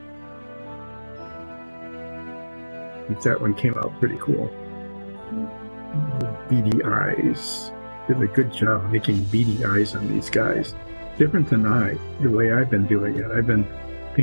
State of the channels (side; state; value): both; inverted; correlation -1.00